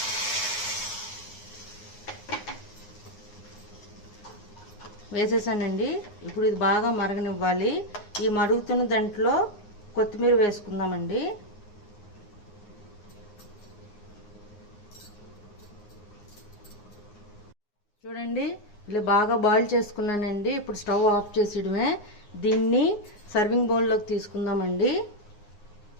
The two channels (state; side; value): late; right; 9.6 ms